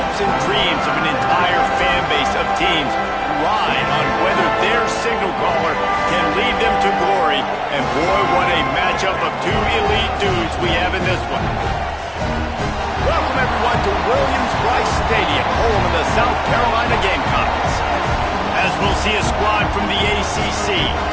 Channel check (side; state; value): both; identical; correlation 1.00